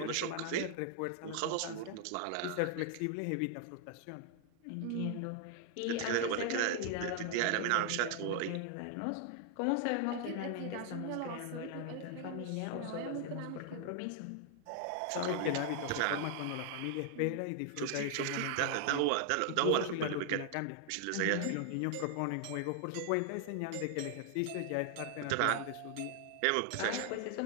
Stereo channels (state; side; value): different; both; correlation 0.00